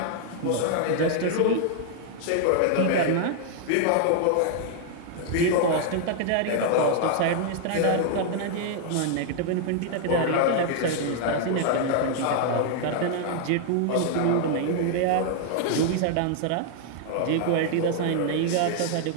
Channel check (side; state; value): both; different; correlation 0.00